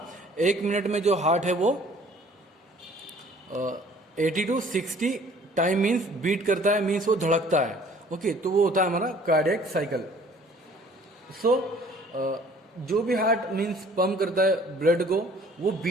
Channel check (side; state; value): both; normal; correlation 0.54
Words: एक मिनट में जो हार्ट है वो 80 to 60 टाइम मीन्स बीट करता है, मीन्स वो धड़कता है. ओके, तो वो होता है हमारा कार्डियक साइकिल. सो जो भी हार्ट मीन्स पंप करता है ब्लड को, वो